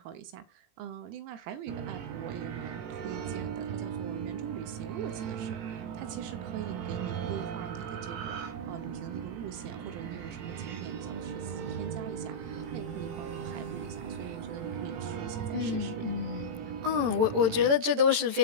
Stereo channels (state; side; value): late; left; 18 ms